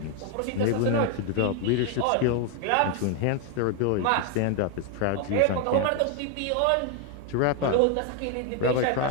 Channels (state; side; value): different; both; correlation 0.01